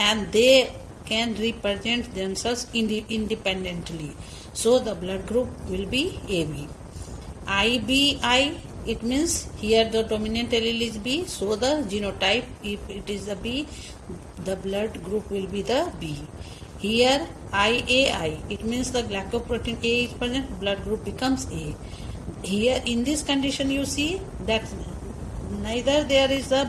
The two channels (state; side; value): identical; both; correlation 1.00